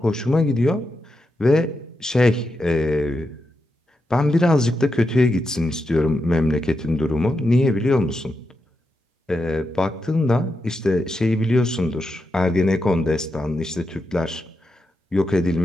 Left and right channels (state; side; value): normal; both; correlation 0.86